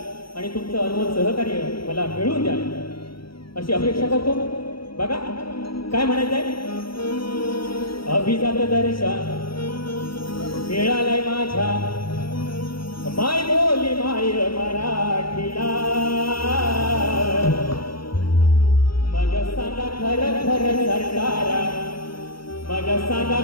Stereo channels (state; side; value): late; right; 0.74 ms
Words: आणि तुमचं अनमोल सहकार्य मला मिळवून द्याल अशी अपेक्षा करतो. बघा काय म्हणायचंय. अभिजात दर्जा मिळालाय माझ्या माय बोली माय मराठीला. मग सांगा खरं खरं सरकारा, मग सांगा